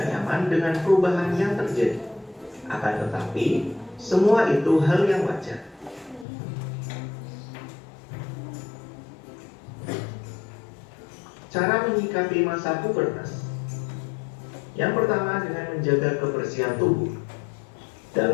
nyaman dengan perubahan yang terjadi. Akan tetapi, semua itu hal yang wajar. Cara menyikapi masa pubertas. Yang pertama, dengan menjaga kebersihan tubuh.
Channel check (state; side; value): drops out; right; at 6.2 s